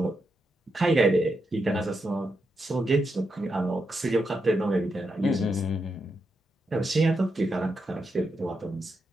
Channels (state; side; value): normal; both; correlation 0.84